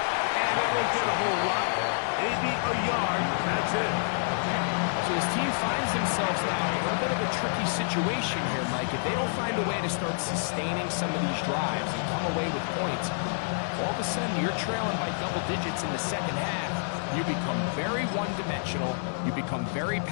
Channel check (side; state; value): right; silent; 59 dB below the other